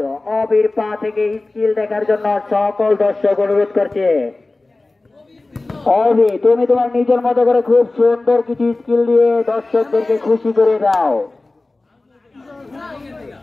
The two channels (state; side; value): quieter; right; 3.1 dB